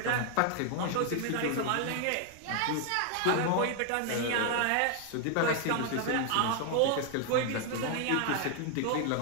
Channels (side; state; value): both; different; correlation 0.00